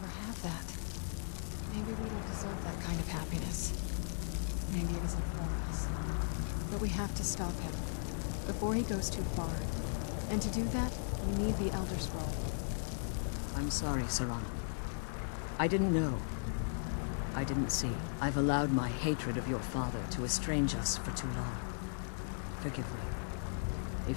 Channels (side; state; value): right; silent; digital silence